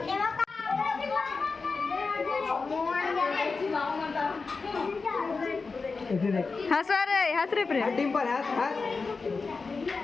हंस रे हंस रे प्रेम डिम्पल हंस हंस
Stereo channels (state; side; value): quieter; right; 4.4 dB